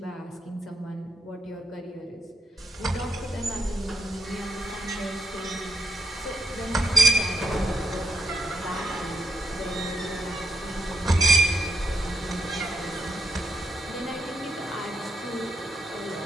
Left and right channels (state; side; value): normal; both; correlation 0.80